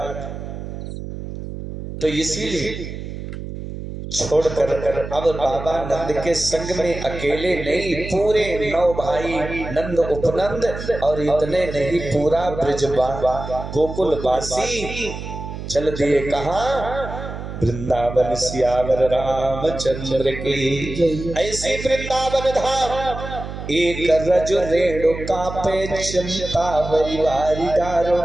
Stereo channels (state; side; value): noise; right; hum, 9 dB below the sound